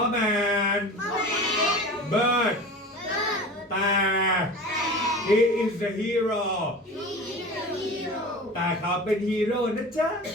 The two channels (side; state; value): both; normal; correlation 0.35